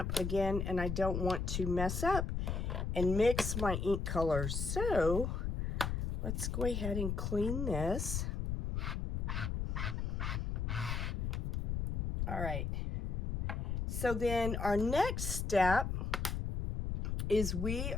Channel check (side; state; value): left; noise; rumble, 2 dB below the sound